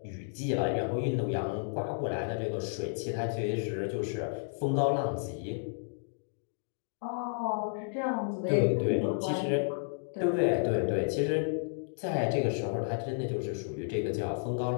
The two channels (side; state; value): right; silent; digital silence